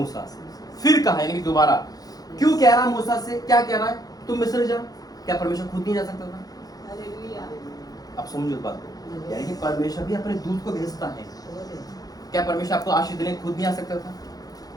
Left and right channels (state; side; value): late; right; 0.18 ms